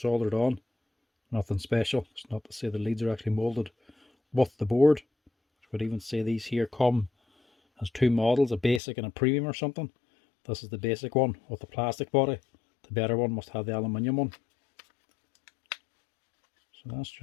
soldered on. Nothing special. It's not to say the leads are actually moulded with the board. I would even say these here come as two models, a basic and a premium or something. This is the basic one with the plastic body. The better one must have the aluminium one. So that's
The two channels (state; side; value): drops out; right; at 8.8 s